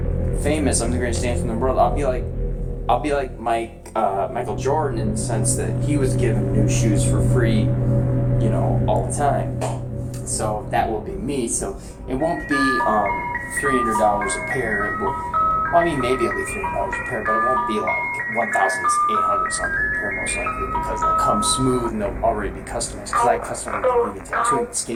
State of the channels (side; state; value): both; identical; correlation 1.00